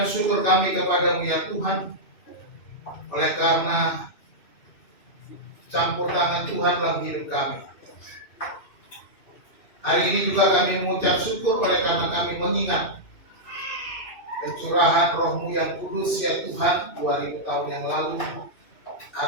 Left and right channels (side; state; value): right; late; 2.6 ms